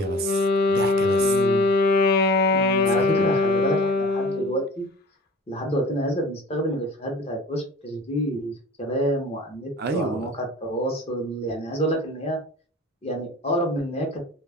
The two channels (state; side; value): normal; both; correlation 0.43